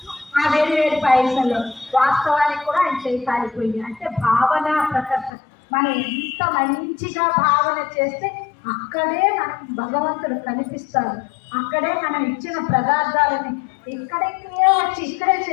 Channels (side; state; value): right; drops out; at 5.3 s